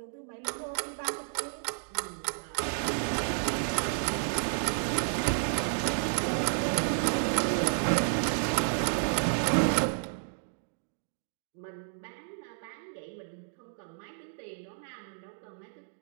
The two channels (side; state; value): left; silent; digital silence